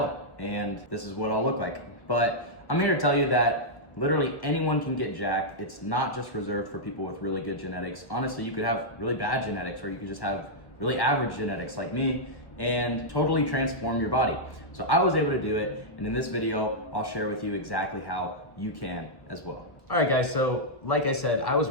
and this is what I'll look like. But I'm here to tell you that literally anyone can get jacked. It's not just reserved for people with really good genetics. Honestly, you could have really bad genetics, or you could just have really average genetics like me and totally transform your body. So I was able to do it, and in this video, I'll share with you exactly how you can as well. All right, guys, so like I said, I was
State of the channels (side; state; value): right; late; 1.1 ms